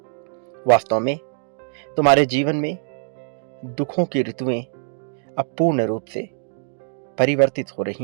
वास्तव में तुम्हारे जीवन में दुखों की ऋतुएं अब पूर्ण रूप से परिवर्तित हो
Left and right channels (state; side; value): silent; left; digital silence